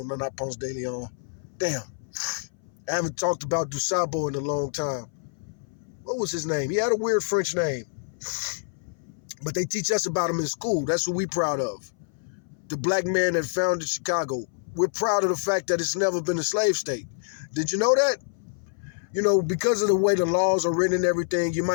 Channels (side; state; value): right; silent; 59 dB below the other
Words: not Ponce de Leon. Damn, I haven't talked about Dusabo in a long time. What was his name? He had a weird French name. But they teach us about him in school. That's what we're proud of. The black man that founded Chicago. We're proud of the fact that it's never been a slave state. Did you know that? You know, because of the way the laws are written and everything, you